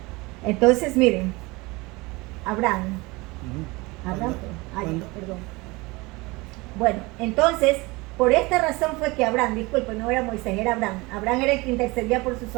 Entonces, miren, Abraham, perdón. Bueno, entonces, por esta razón fue que Abraham, disculpe, no era Moisés, era Abraham. Abraham era el que intercedía por su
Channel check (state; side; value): quieter; left; 23.7 dB